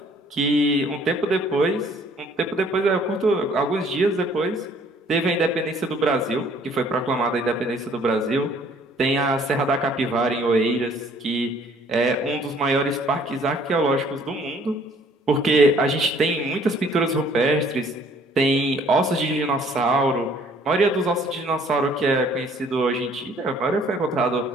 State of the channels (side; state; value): both; normal; correlation 0.58